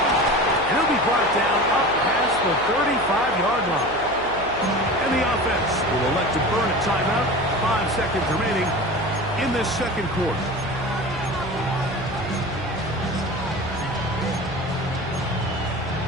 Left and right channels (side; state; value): right; noise; hum, 15 dB below the sound